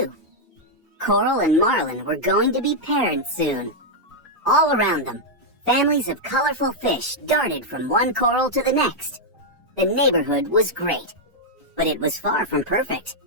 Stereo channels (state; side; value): normal; both; correlation -0.02